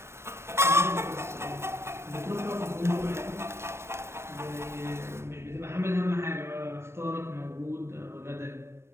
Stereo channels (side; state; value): left; late; 0.13 ms